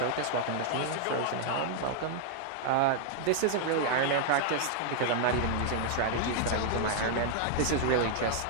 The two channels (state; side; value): different; both; correlation -0.01